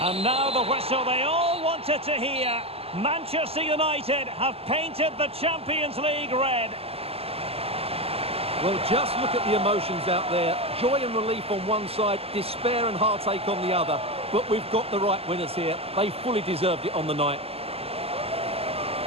And now the whistle they all wanted to hear. Manchester United have painted the Champions League red. Well, just look at the emotions out there. Joy and relief on one side, despair and heartache on the other. But we've got the right winners here. They fully deserved it on the night.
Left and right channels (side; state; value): left; late; 0.29 ms